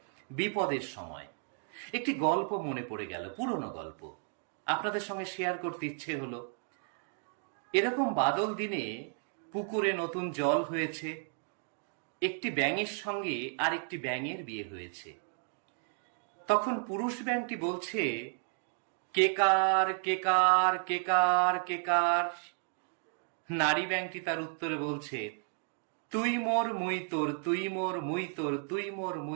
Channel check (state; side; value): silent; left; 56 dB below the other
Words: বিপদের সময়। একটি গল্প মনে পড়ে গেল, পুরনো গল্প, আপনাদের সঙ্গে শেয়ার করতে ইচ্ছে হলো। এরকম বাদল দিনে পুকুরে নতুন জল হয়েছে, একটি ব্যাঙের সঙ্গে আর একটি ব্যাঙের বিয়ে হয়েছে। তখন পুরুষ ব্যাঙটি বলছে, কেকার কেকার কেকার কেকার। নারী ব্যাঙটি তার উত্তরে বলছে, তুই মোর মুই তোর, তুই মোর মুই তোর, তুই মোর